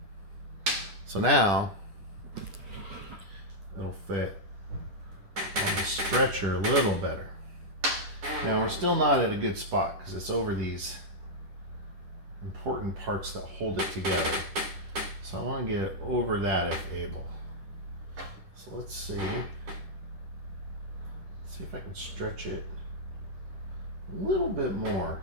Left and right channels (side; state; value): left; late; 10 ms